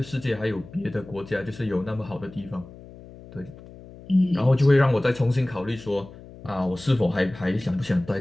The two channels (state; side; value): noise; left; hum, 18 dB below the sound